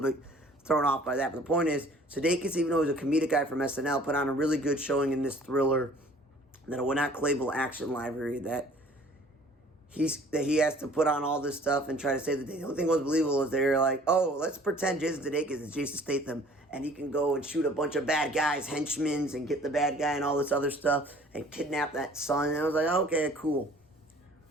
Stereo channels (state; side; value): normal; both; correlation 0.52